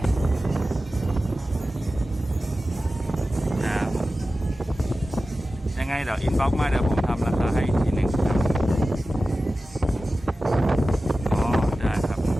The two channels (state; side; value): normal; both; correlation 0.95